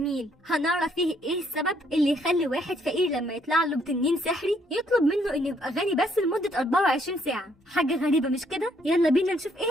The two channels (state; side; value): normal; both; correlation 0.69